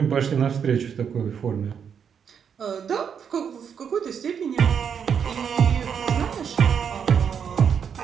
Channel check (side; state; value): left; quieter; 7.4 dB